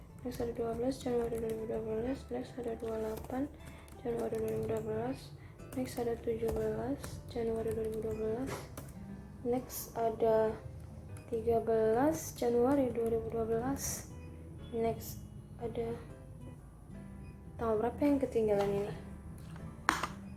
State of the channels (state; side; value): identical; both; correlation 1.00